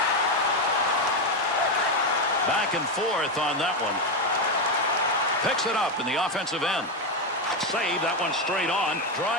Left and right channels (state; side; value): normal; both; correlation 0.09